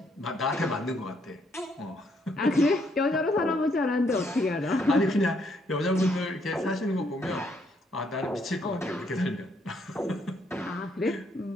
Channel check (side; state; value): both; normal; correlation 0.71